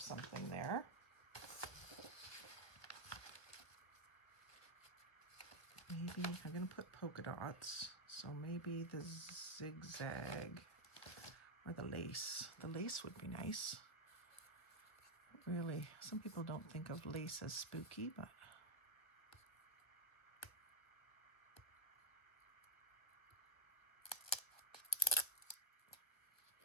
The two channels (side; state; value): right; late; 1.1 ms